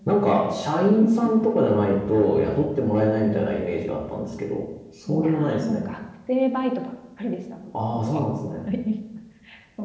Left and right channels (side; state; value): both; identical; correlation 1.00